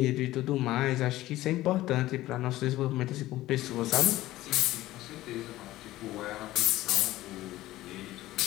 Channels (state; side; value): quieter; right; 16.1 dB